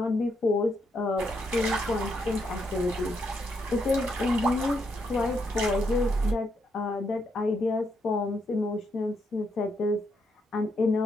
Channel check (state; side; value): normal; both; correlation 0.78